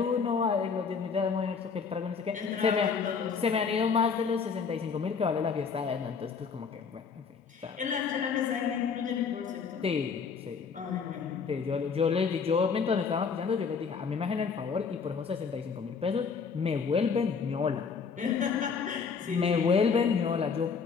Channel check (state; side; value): quieter; right; 5.7 dB